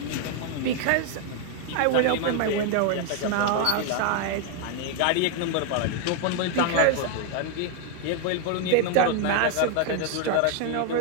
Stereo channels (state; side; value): different; both; correlation 0.01